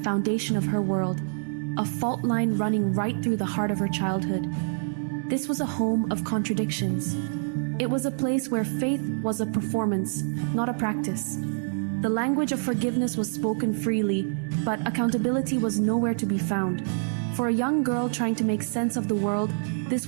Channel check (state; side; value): silent; left; 57 dB below the other